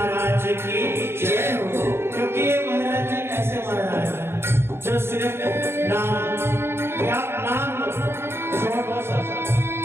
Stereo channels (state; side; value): late; left; 0.12 ms